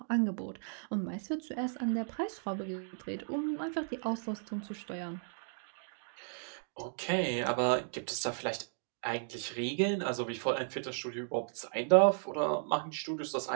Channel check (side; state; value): left; silent; digital silence